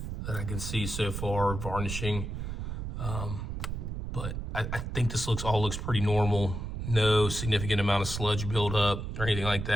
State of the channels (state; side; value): noise; right; rumble, 5 dB below the sound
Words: that I can see so far, varnishing. But I think this all looks pretty normal. No significant amount of sludge buildup or anything like